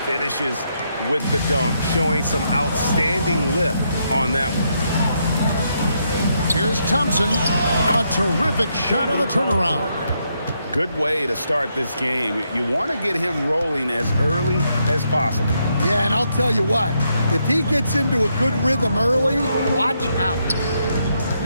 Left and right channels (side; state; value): both; inverted; correlation -0.78